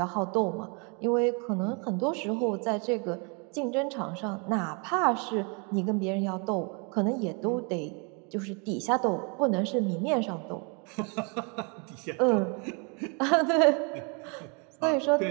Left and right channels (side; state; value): left; quieter; 34.4 dB